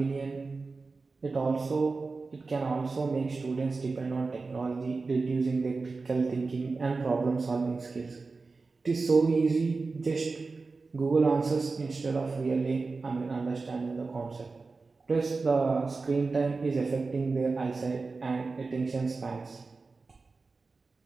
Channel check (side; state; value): left; quieter; 4.0 dB